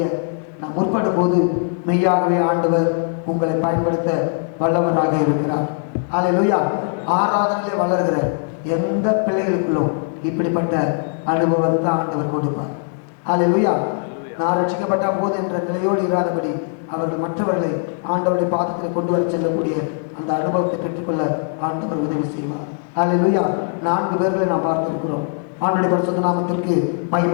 நாம் முற்படும் போது மெய்யாகவே ஆண்டவர் உங்களை பயன்படுத்த வல்லவராக இருக்கிறார். அல்லேலூயா. ஆராதனையிலே வளர்கிற எந்த பிள்ளைகளுக்குள்ளும் இப்படிப்பட்ட அனுபவத்தை ஆண்டவர் கொடுப்பார். அல்லேலூயா. நான் ரட்சிக்கப்பட்ட போது என்ற நிலையோடு இராதபடி அவர்கள் மற்றவர்களை ஆண்டவருடைய பாதத்தில் கொண்டு வர செல்லக்கூடிய அந்த அனுபவத்தை பெற்றுக்கொள்ள ஆண்டவர் உதவி செய்வார். அல்லேலூயா. 4 பேர்களை நாம் பார்த்திருக்கிறோம். ஆண்டவருடைய பரிசுத்த நாமத்திற்கு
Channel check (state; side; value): silent; right; 56 dB below the other